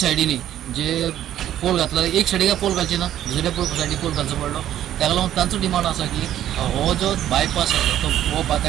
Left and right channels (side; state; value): left; quieter; 11.8 dB